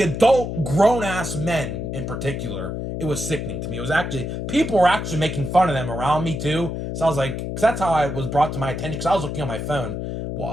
adult grown-ass men in particular, it was sickening to me. It was actually, people were actually making fun of them around me too. So I was like, because that's how I was brought to my attention, because I was looking on my phone,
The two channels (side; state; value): left; noise; hum, 4 dB below the sound